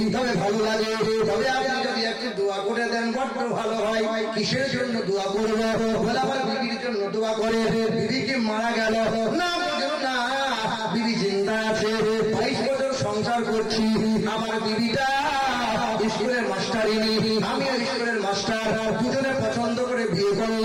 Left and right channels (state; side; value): identical; both; correlation 1.00